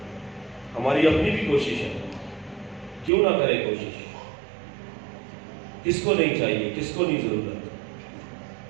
ہماری اپنی بھی کوشش ہے، کیوں نہ کرے کوشش؟ کس کو نہیں چاہیے، کس کو نہیں ضرورت؟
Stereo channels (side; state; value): left; drops out; at 3.1 s